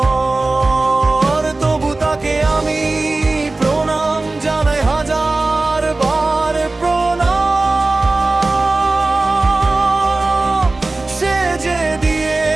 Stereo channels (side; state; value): left; quieter; 3.2 dB